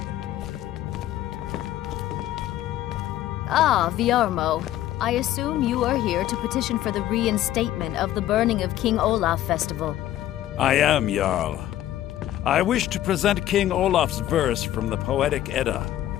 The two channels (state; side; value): quieter; right; 13.2 dB